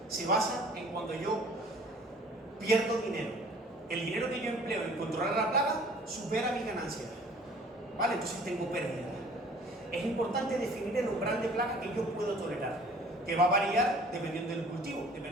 se basa en cuando yo pierdo dinero. El dinero que yo empleo en controlar la plaga supera mi ganancia, ¿vale? Entonces tengo pérdida. Es importante definir el umbral de plaga que yo puedo tolerar, que va a variar dependiendo del cultivo,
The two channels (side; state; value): both; normal; correlation 0.51